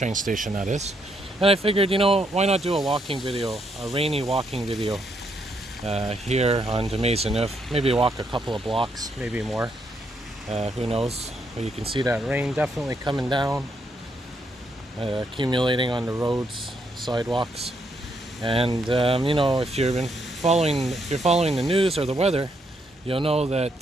station that is. And I figured, why not do a walking video, a rainy walking video here on the Maisonneuve. Maybe walk a couple of blocks, maybe more. Who knows? But you can see that rain definitely coming down, accumulating on the roads, sidewalks. And if you're following the news or the weather, you'll know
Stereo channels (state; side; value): normal; both; correlation 0.76